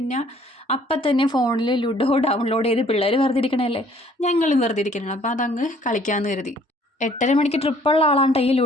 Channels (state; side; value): normal; both; correlation 0.59